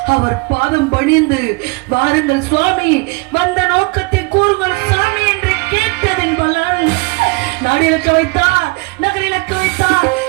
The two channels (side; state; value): left; quieter; 27.4 dB